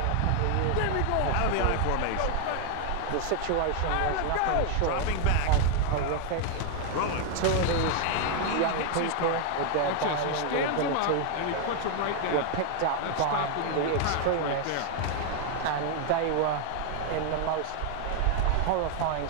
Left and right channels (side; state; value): both; different; correlation 0.00